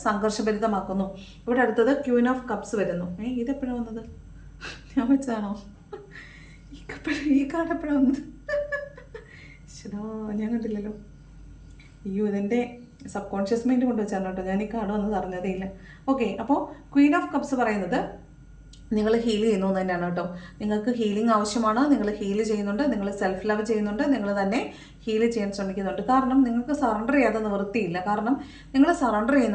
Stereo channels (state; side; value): identical; both; correlation 1.00